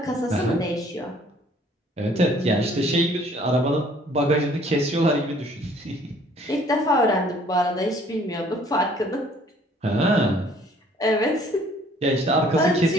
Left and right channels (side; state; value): both; normal; correlation 0.58